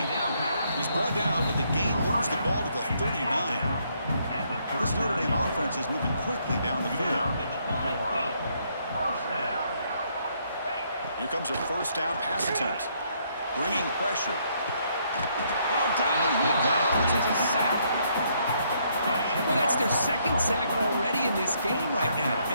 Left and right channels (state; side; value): inverted; both; correlation -0.71